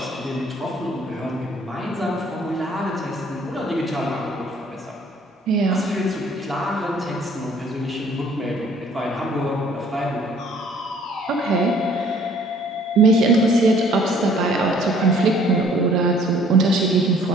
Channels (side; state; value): both; normal; correlation 0.57